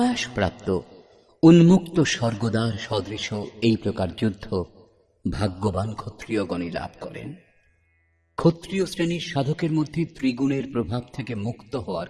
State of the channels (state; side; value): identical; both; correlation 1.00